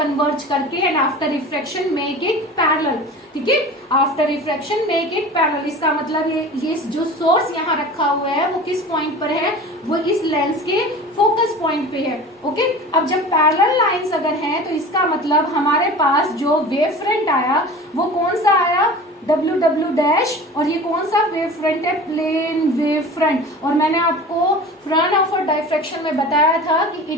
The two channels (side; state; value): both; normal; correlation 0.37